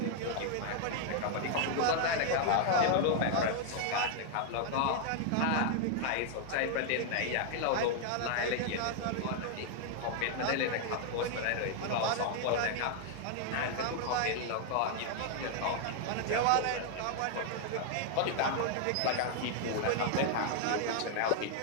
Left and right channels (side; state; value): both; different; correlation 0.00